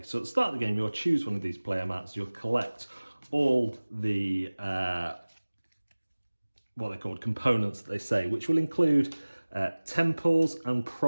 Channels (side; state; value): both; inverted; correlation -1.00